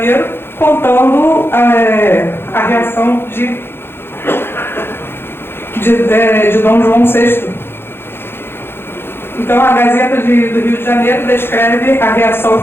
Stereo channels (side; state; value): right; late; 0.11 ms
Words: contando a reação de Dom João VI. Então, a Gazeta do Rio de Janeiro descreve a reação